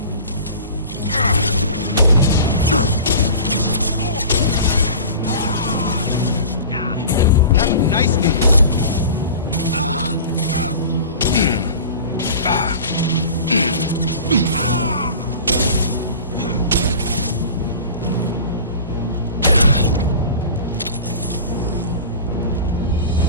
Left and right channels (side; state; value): both; inverted; correlation -0.38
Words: Have a nice meal.